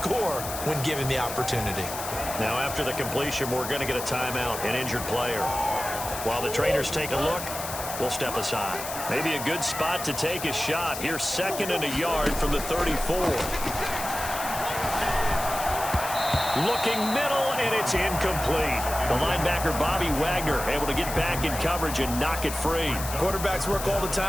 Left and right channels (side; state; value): left; noise; hiss, 8 dB below the sound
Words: when given the opportunity. Now, after the completion, we're going to get a timeout, an injured player. While the trainers take a look, we'll step aside. Maybe a good spot to take a shot. Here's 2nd and a yard from the 34. Looking middle, and it's incomplete. The linebacker, Bobby Wagner, able to get back in coverage and knock it free. Quarterbacks work all the